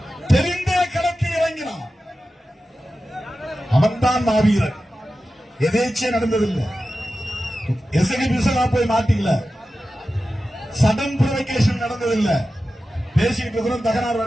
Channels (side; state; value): both; normal; correlation 0.93